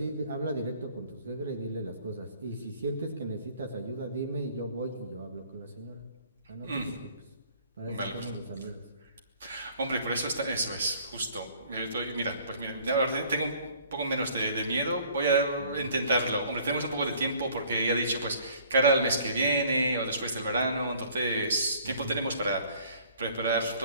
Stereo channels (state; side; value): inverted; both; correlation -0.56